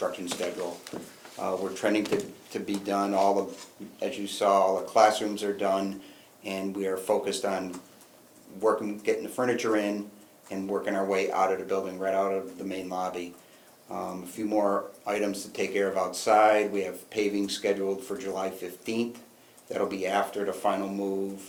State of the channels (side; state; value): both; identical; correlation 1.00